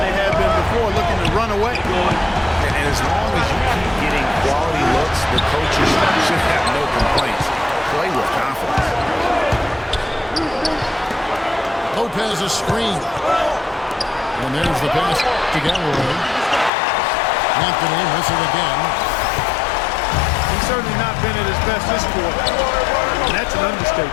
they have been before, looking to run away. And as long as you keep getting quality looks, the coaches should have no complaints. Play with confidence. Lopez a screen. And there's the pass to Galloway. Anthony missing again. He's certainly not been at his best this quarter. That's an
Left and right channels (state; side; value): drops out; right; at 16.7 s